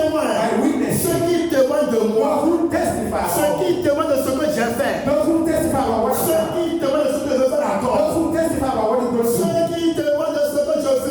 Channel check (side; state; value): both; identical; correlation 1.00